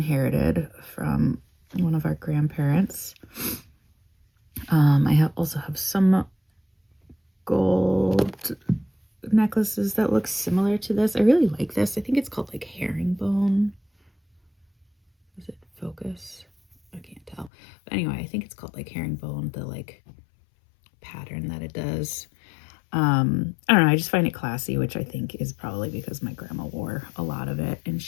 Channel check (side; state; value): right; drops out; at 17.5 s